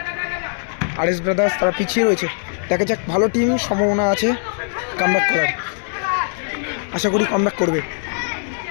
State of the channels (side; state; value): right; silent; digital silence